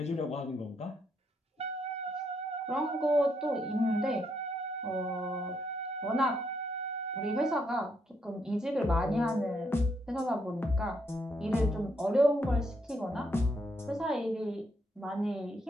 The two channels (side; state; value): both; normal; correlation 0.76